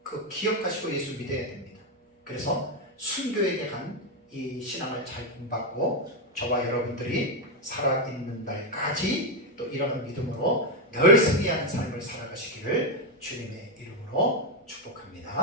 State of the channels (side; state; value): both; normal; correlation 0.05